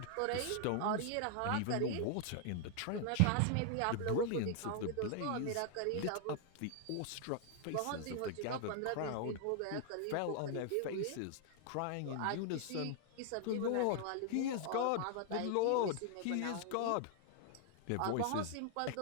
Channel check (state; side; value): different; both; correlation 0.00